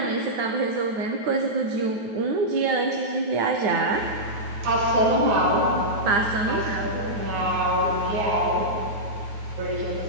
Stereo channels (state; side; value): late; left; 9.3 ms